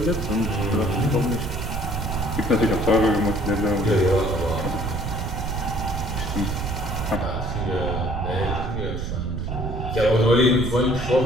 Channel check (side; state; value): right; noise; rumble, 3 dB below the sound